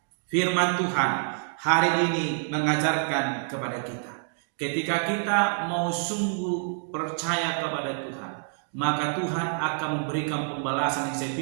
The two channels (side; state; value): left; silent; digital silence